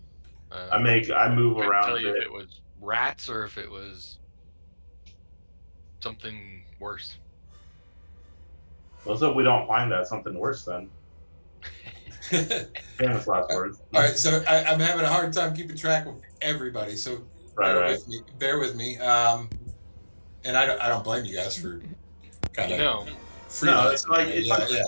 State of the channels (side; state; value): both; inverted; correlation -1.00